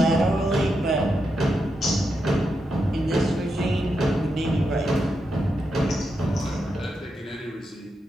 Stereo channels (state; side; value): normal; both; correlation 0.85